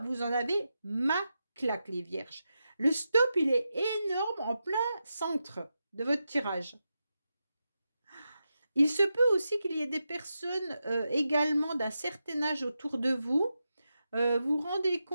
vous en avez ma claque, les vierges. Le stop, il est énorme en plein centre de votre tirage. Il se peut aussi qu'il y ait des personnes également d'un certain âge autour de vous. Vous rendez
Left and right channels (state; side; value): inverted; both; correlation -0.89